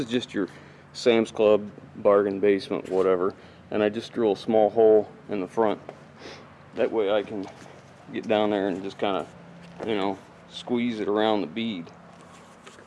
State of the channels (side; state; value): both; identical; correlation 1.00